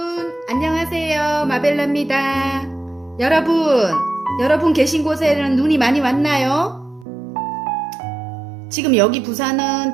안녕하세요. 마벨라입니다. 여러분 계신 곳에는 눈이 많이 왔나요? 지금 여기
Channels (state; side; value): drops out; left; at 7.1 s